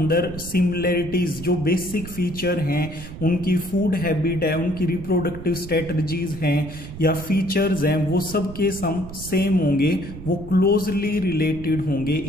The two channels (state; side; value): noise; right; rumble, 12 dB below the sound